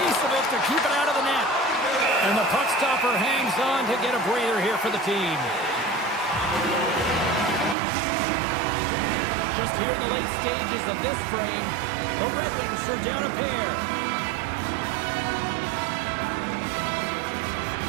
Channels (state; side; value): drops out; left; at 7.8 s